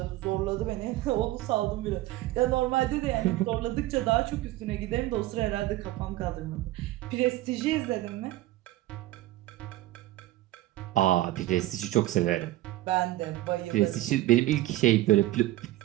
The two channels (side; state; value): left; quieter; 16.4 dB